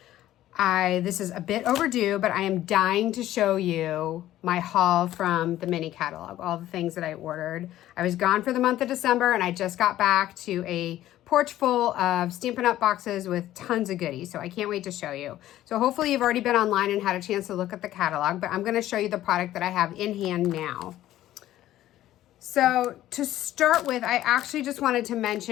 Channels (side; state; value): right; quieter; 13.8 dB